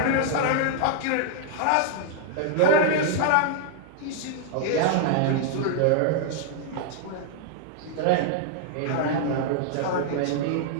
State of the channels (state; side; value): different; both; correlation -0.01